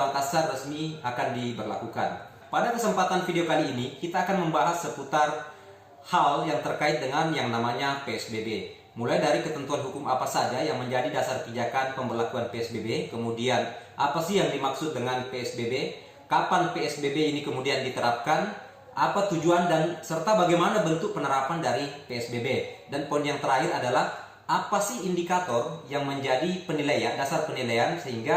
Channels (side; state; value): both; identical; correlation 1.00